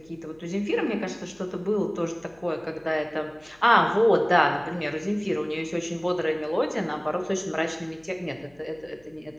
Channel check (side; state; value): left; noise; hum, 30 dB below the sound